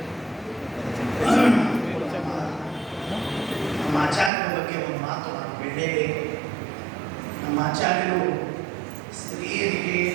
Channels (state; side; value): drops out; left; at 4.3 s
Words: ನಮ್ಮ ಆಚಾರ್ಯರ ಬಗ್ಗೆ ಒಂದು ಮಾತು ನಾನು ಹೇಳಲೇಬೇಕು. ನಮ್ಮ ಆಚಾರ್ಯರು ಸ್ತ್ರೀಯರಿಗೆ